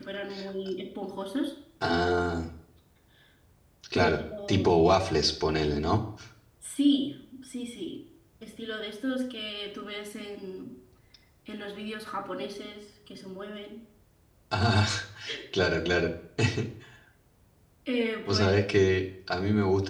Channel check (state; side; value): identical; both; correlation 1.00